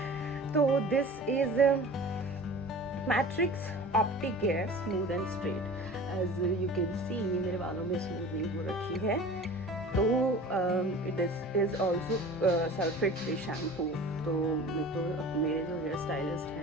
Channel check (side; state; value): both; normal; correlation 0.40